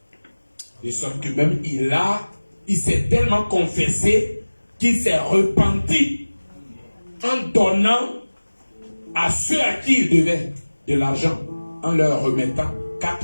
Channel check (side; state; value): both; inverted; correlation -1.00